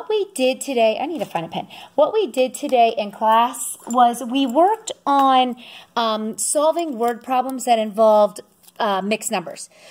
we did today, I need to find a pen. What we did today in class was we worked on solving word problems that involved mixed numbers.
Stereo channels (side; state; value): both; identical; correlation 1.00